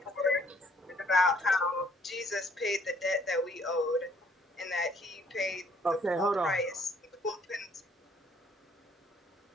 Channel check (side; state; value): both; normal; correlation 0.63